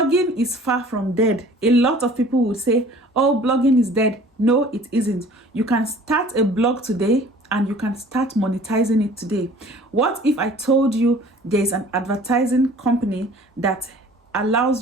is far from dead. A lot of people would say, oh, blogging is dead. No, it isn't. You can start a blog today and you can start monetizing it today. What if I told you there's an advertising company that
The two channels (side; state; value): both; normal; correlation 0.49